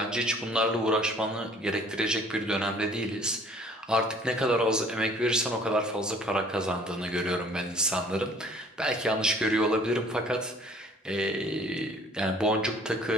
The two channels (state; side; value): normal; both; correlation 0.54